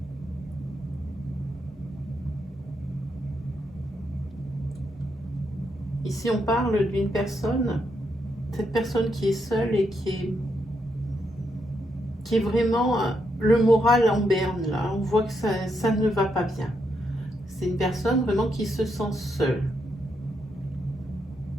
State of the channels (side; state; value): both; normal; correlation 0.80